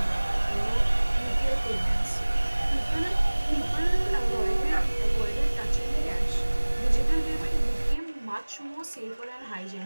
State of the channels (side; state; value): both; inverted; correlation -1.00